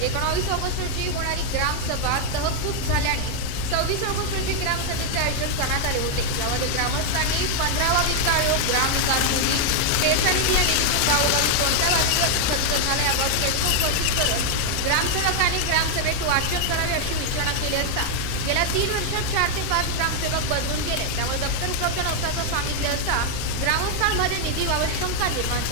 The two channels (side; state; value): both; different; correlation 0.00